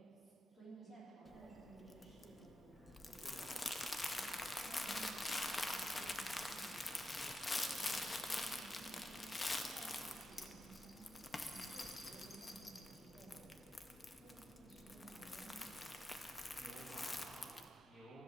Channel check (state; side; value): normal; both; correlation 0.89